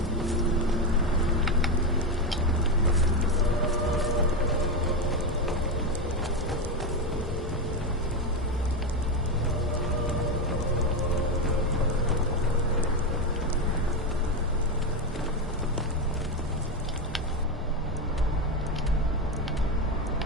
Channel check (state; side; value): normal; both; correlation 0.11